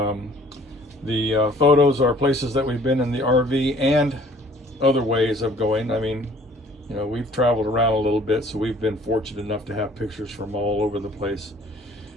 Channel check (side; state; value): both; normal; correlation 0.55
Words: the photos are places that we've been in the RV and other ways of going. I mean, you know, we've traveled around a little bit, so we've been fortunate enough to have pictures from all over the place.